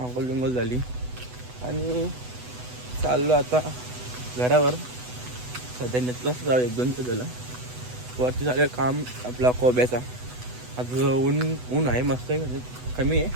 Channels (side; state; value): left; late; 8.0 ms